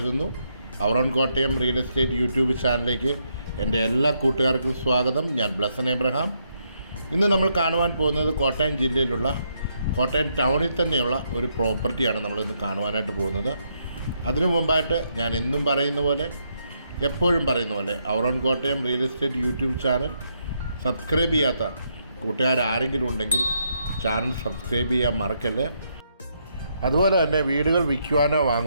Our own Kottayam real estate YouTube ചാനലിലേക്ക് എൻ്റെ എല്ലാ കൂട്ടുകാർക്കും സ്വാഗതം. ഞാൻ ബ്ലസൻ എബ്രഹാം. ഇന്ന് നമ്മൾ കാണുവാൻ പോകുന്നത് കോട്ടയം ജില്ലയിലുള്ള കോട്ടയം ടൗണിൽ തന്നെയുള്ള ഒരു പ്രോപ്പർട്ടിയാണ് നമ്മളിന്ന് കാണുവാനായിട്ട് പോകുന്നത്. അതിനു മുമ്പായിട്ട് ഞാൻ എന്നും പറയുന്ന പോലെ, എപ്പോഴും പറയുന്ന പോലെ, our own Kottayam real estate YouTube channel subscribe ചെയ്യാത്ത കൂട്ടുകാരാരെങ്കിലും ഉണ്ടെങ്കിൽ ചാനൽ സബ്സ്ക്രൈബ് ചെയ്യാൻ മറക്കല്ലേ. അതുപോലെ തന്നെ വീടുകൾ വിൽക്കുവാനോ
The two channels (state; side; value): inverted; both; correlation -0.77